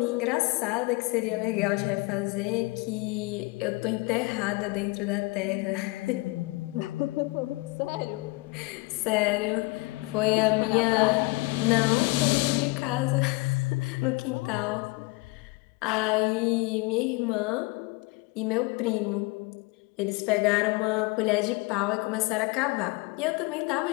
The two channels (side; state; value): right; quieter; 24.3 dB